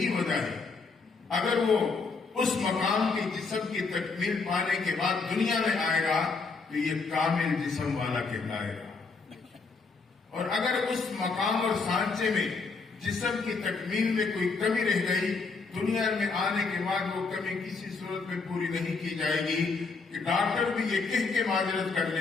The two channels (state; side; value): quieter; right; 4.4 dB